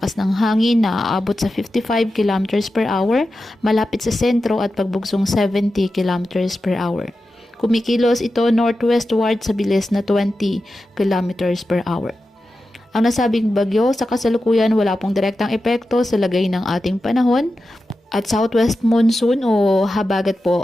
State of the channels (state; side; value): normal; both; correlation 0.92